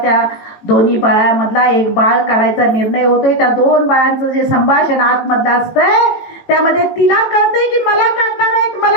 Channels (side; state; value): right; late; 18 ms